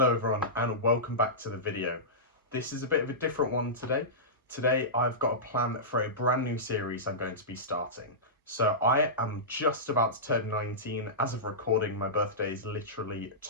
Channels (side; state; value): both; normal; correlation -0.16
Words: everyone and welcome back to the video. This is a bit of a different one today. Today I've got a plan for a brand new series I'm going to be starting. So I am just about to turn 19. As of recording, my birthday is literally